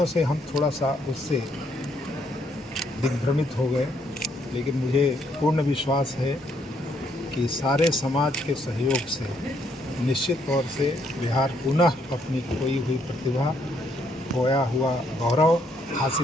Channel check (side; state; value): both; normal; correlation 0.71